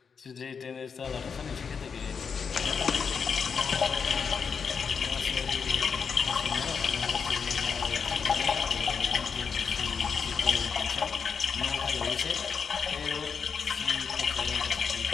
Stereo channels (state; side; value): quieter; right; 6.1 dB